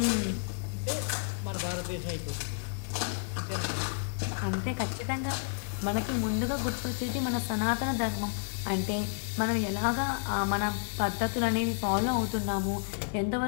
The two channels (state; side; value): silent; right; digital silence